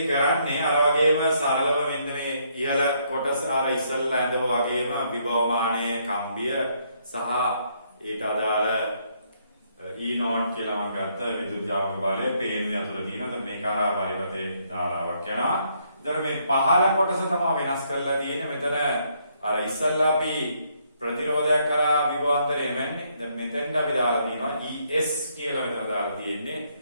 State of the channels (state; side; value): inverted; both; correlation -0.72